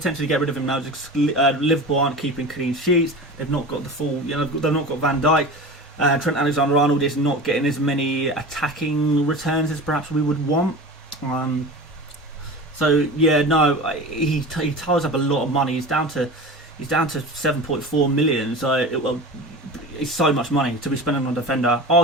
get rid of him now. Just, Liverpool aren't keeping clean sheets. They've not got the full, you know, they've not got Van Dijk. Trent Alexander-Arnold is not getting as many attacking returns as perhaps we would want. So yeah, no, he ties up a lot of money. He's down to 7.4 million. So it's so much money to be spending on a defender.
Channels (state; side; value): normal; both; correlation 0.33